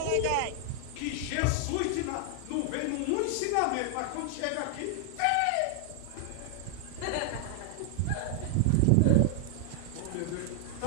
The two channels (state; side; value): different; both; correlation 0.00